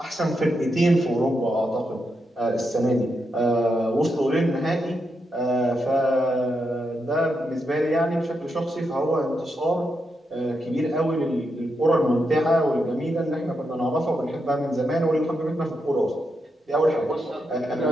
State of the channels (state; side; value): normal; both; correlation 0.84